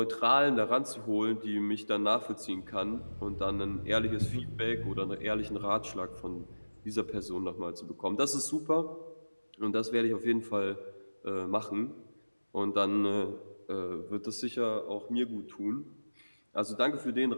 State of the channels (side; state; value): both; inverted; correlation -1.00